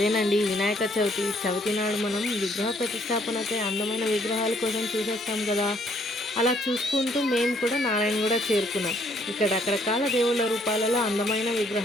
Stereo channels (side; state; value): both; normal; correlation 0.66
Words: వినాయక చవితి. చవితి నాడు మనం విగ్రహ ప్రతిష్టాపనకై అందమైన విగ్రహాల కోసం చూసేస్తాం కదా. అలా చూసుకుంటూ మేము కూడా నారాయణగూడ చేరుకున్నాం. ఇక్కడ రకరకాల దేవుళ్ళ రూపాలలో అందమైన